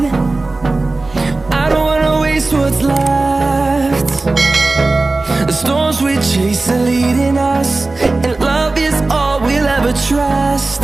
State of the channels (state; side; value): quieter; left; 3.3 dB